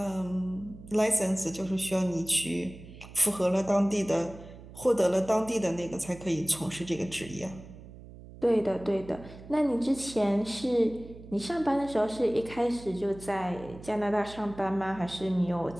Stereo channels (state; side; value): noise; right; hum, 17 dB below the sound